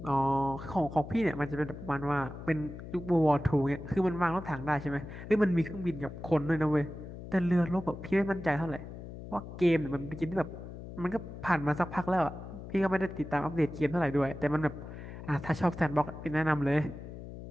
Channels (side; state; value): left; noise; hum, 11 dB below the sound